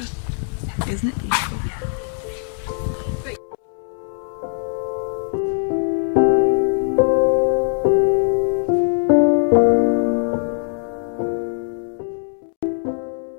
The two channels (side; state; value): right; silent; 65 dB below the other